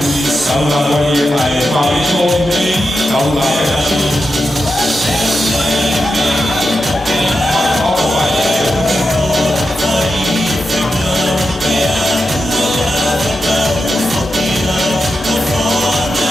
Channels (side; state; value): both; normal; correlation 0.88